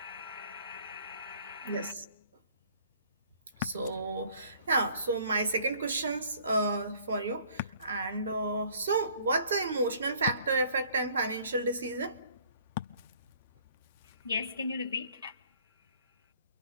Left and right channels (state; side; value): inverted; both; correlation -0.57